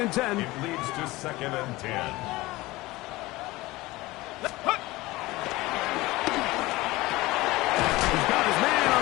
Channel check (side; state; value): right; quieter; 19.8 dB